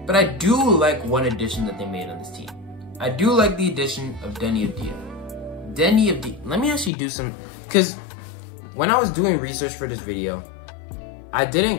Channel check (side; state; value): right; drops out; at 6.9 s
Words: But I do like one addition that they made on this team. I do like the addition of Deni Avdija. Let me actually do some, because when I was doing research for this video, I